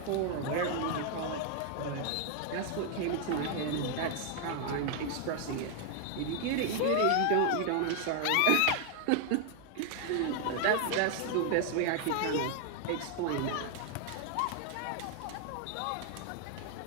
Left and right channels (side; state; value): both; different; correlation 0.00